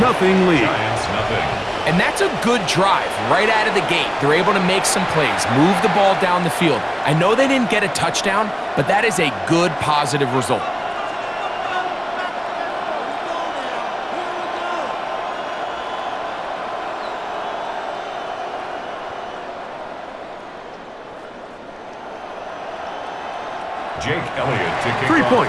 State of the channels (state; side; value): identical; both; correlation 1.00